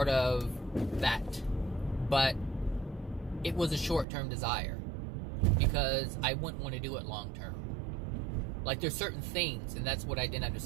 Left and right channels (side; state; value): left; drops out; at 4.0 s